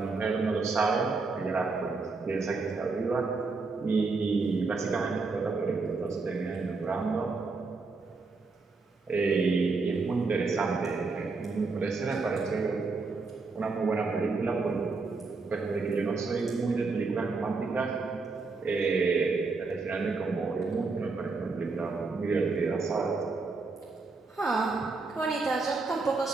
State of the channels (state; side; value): quieter; left; 4.1 dB